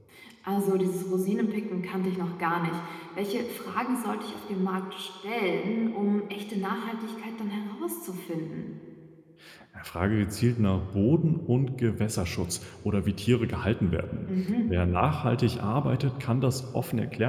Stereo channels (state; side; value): identical; both; correlation 1.00